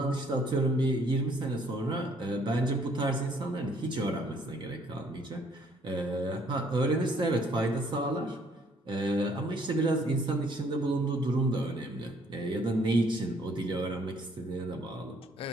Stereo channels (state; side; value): normal; both; correlation 0.63